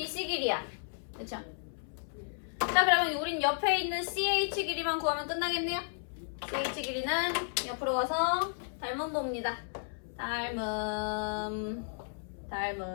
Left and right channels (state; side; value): silent; right; 56 dB below the other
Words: 길이야. 그쵸? 자 그러면 우린 옆에 있는 CH 길이만 구하면 끝나겠네요. CH 길이는 옆으로 와서 닮음 봅니다. 닮음